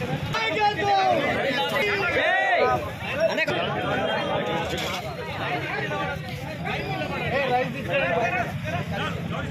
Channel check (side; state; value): both; identical; correlation 1.00